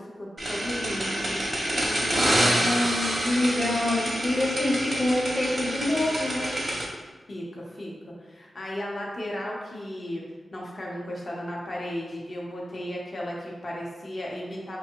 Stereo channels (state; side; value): normal; both; correlation 0.91